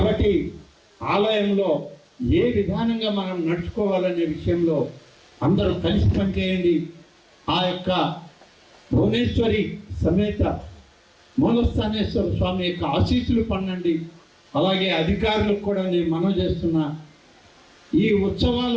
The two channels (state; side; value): identical; both; correlation 1.00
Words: ఆలయంలో ఏ విధానంగా మనం నడుచుకోవాలనే విషయంలో అందరూ కలిసి పనిచేయండి. ఆ యొక్క భువనేశ్వరి సమేత మూలస్థానేశ్వర స్వామి యొక్క ఆశీస్సులు పొందండి. అలాగే అధికారులకు కూడా నేను మనవి చేస్తున్నా, ఈ